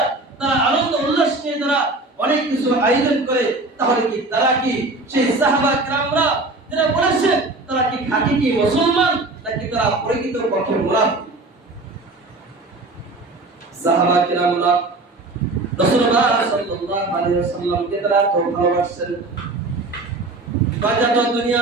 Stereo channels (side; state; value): left; quieter; 3.1 dB